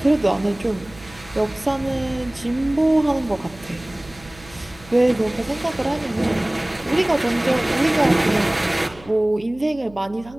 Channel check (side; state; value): right; noise; hum, 21 dB below the sound